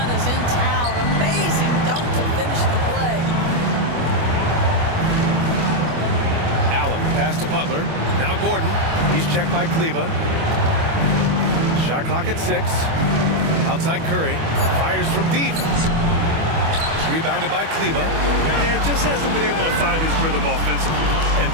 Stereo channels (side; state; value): left; late; 25 ms